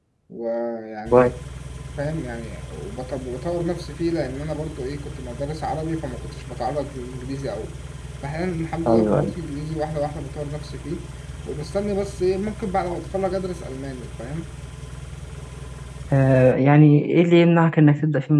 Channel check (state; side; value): identical; both; correlation 1.00